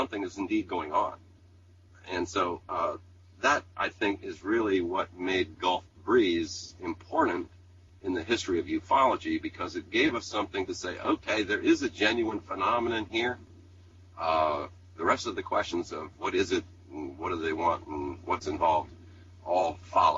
is indeed going on. And so that, I think, is really what made Gulf Breeze important in the history of ufology, because it gave us something to say, okay, there is a genuine phenomenon here. The rest of the questions of what is it, and what do they want, and what's involved, all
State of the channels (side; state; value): both; identical; correlation 1.00